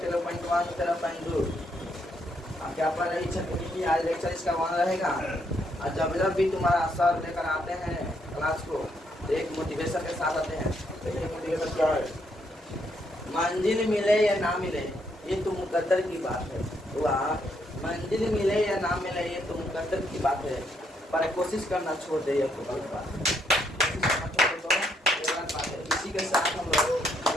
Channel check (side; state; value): both; normal; correlation 0.74